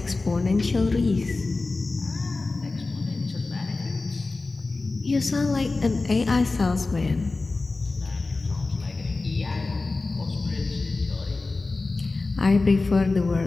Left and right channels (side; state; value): right; quieter; 3.5 dB